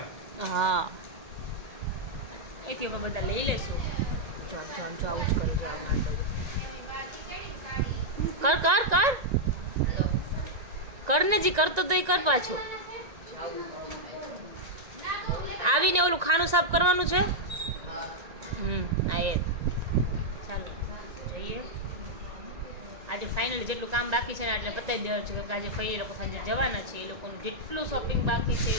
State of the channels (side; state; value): left; late; 1.9 ms